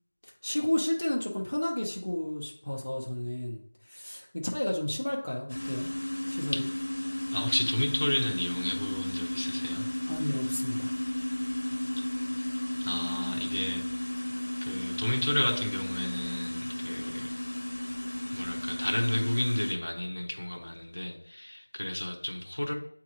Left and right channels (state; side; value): inverted; both; correlation -1.00